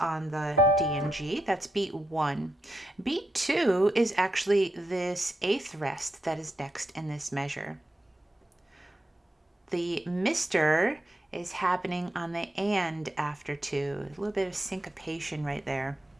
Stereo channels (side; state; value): both; normal; correlation 0.84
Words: the D and G. That's beat 1. Beat 2 is actually this 8th rest that is next in this measure. The mister is happening on the and after 2. A little bit of syncopation right there.